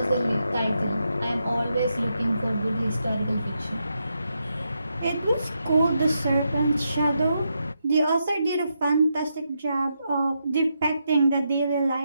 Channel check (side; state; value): both; inverted; correlation -0.83